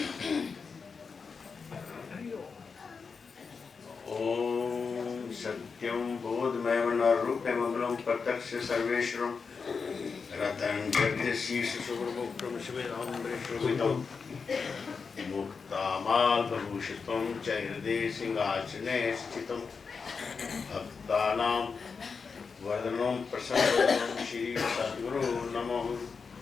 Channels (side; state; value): right; quieter; 5.2 dB